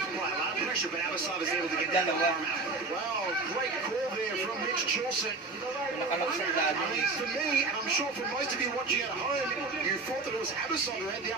a lot of pressure, but Abasov is able to get that arm out. Wow, great call there from Mitch Chilson. For me, and I'm sure for most of you watching at home, you thought that it was Abasov who had the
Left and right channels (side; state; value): left; quieter; 3.7 dB